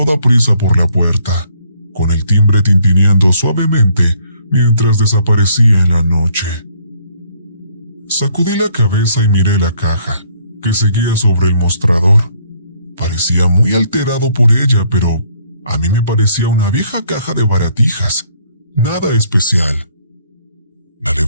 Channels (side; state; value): both; inverted; correlation -0.65